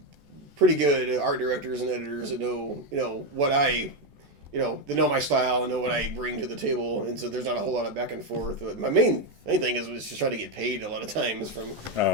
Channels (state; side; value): late; left; 14 ms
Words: good art directors and editors that know what I. They know my style and know what I bring to the table, and so there's not a whole lot of back and forth. But my main thing is just trying to get paid a lot of times from